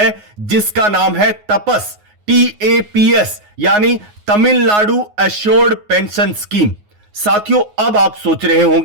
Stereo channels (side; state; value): left; late; 9.5 ms